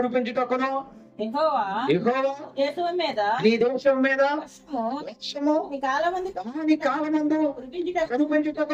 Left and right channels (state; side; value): identical; both; correlation 1.00